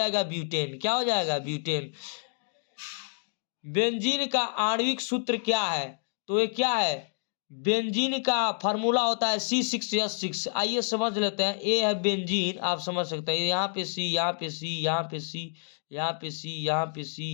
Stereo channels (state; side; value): silent; right; digital silence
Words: ब्यूटेन। क्या हो जाएगा? ब्यूटेन। बेंजीन का आणविक सूत्र क्या है? तो ये क्या है? बेंजीन का फार्मूला होता है C6H6। आइए समझ लेते हैं। ए है बेंजीन, आप समझ सकते हैं, यहाँ पे सी, यहाँ पे सी, यहाँ पे सी, यहाँ पे सी, यहाँ पे